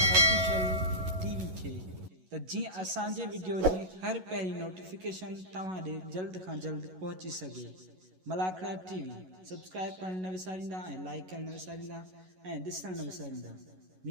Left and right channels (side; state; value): left; late; 11 ms